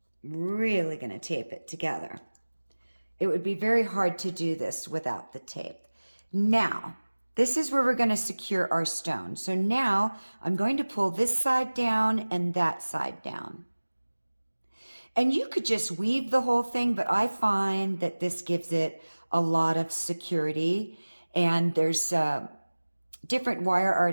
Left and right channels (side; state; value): both; inverted; correlation -1.00